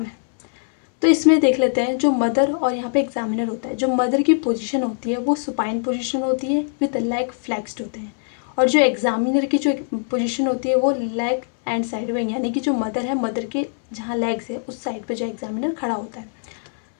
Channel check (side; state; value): right; silent; 64 dB below the other